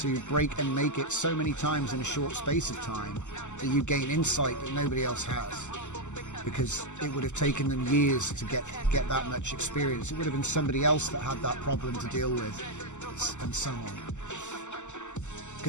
break and make it so many times in a short space of time that you gain insight that nobody else has, because it would have taken them years to get that much experience. It would have been somebody else that had that problem to deal with, and so on.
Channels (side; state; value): right; late; 0.84 ms